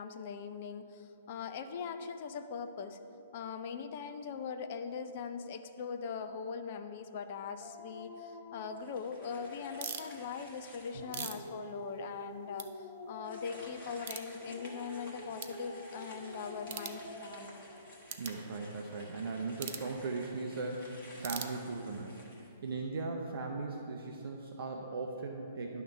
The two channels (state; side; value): inverted; both; correlation -0.52